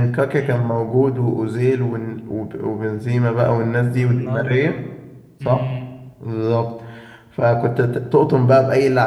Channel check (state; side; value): identical; both; correlation 1.00